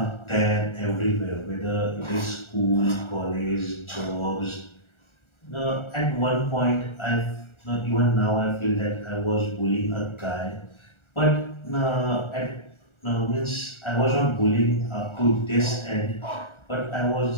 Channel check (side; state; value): right; late; 1.4 ms